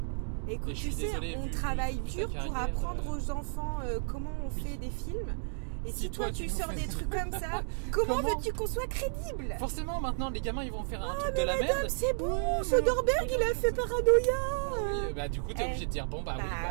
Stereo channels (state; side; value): silent; left; digital silence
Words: Écoute, tu sais, on travaille dur pour apprendre aux enfants comment on fait des films. Et si toi tu sors des trucs comme ça, comment veux-tu qu'on soit crédible? Forcément, maintenant les gamins ils vont faire un truc de la merde. C'est bon, Soderbergh il a fait Paranoia. Oui, bah du coup t'es obligé de dire bon